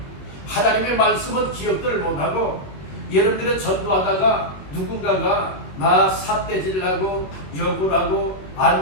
하나님의 말씀은 기억들을 못하고, 여러분들은 전도하다가 누군가가 나 삿대질하고 욕을 하고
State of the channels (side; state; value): right; late; 21 ms